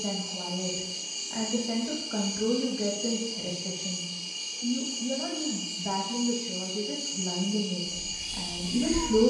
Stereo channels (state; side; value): identical; both; correlation 1.00